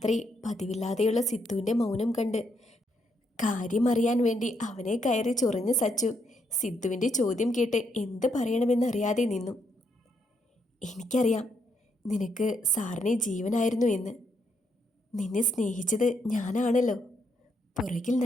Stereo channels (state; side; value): normal; both; correlation 0.76